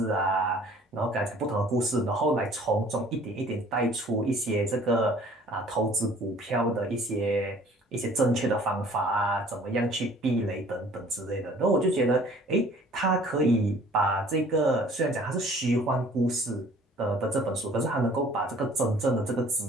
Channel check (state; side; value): normal; both; correlation 0.52